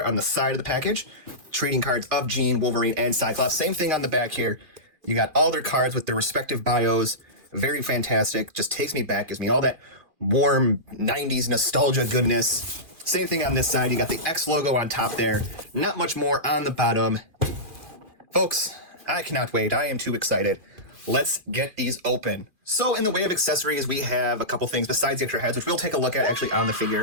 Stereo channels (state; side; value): late; left; 2.4 ms